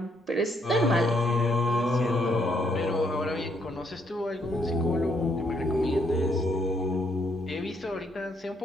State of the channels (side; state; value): both; normal; correlation 0.72